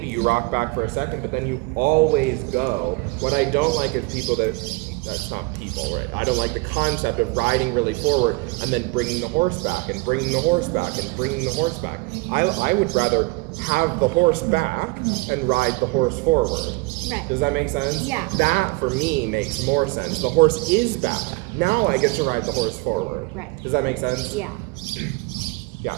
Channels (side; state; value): left; quieter; 25.0 dB